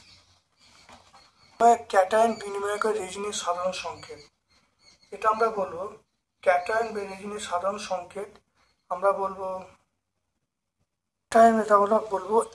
ক্যাটায়ন বিনিময়কের রেজিনের সাধারণ সংকেত, এটা আমরা বলবো ক্যাটায়ন বা রেজিনের সাধারণ সংকেত আমরা বলবো টাইম এটা আমরা বলবো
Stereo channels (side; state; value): both; identical; correlation 1.00